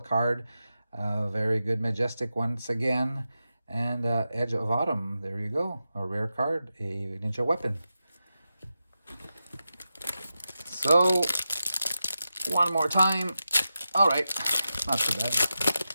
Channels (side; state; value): both; inverted; correlation -0.90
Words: Very good, majestic once again. And Edge of Autumn, there you go, a rare card, a ninja weapon. So one more time. All right, not too bad.